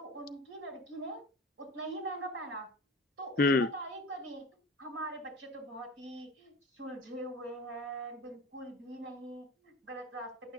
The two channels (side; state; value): both; normal; correlation 0.35